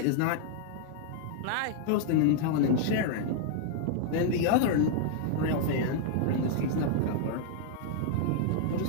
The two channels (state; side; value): different; both; correlation -0.01